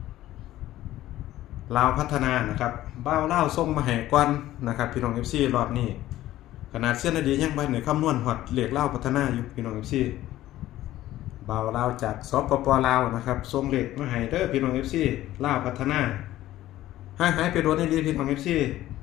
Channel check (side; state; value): right; quieter; 14.6 dB